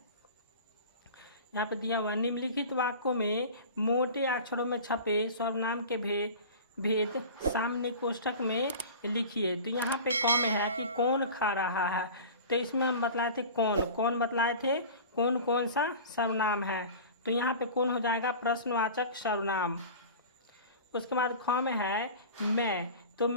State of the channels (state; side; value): inverted; both; correlation -0.36